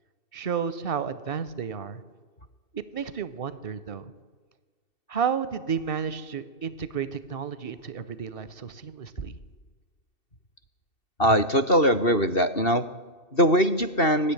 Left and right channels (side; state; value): right; late; 2.7 ms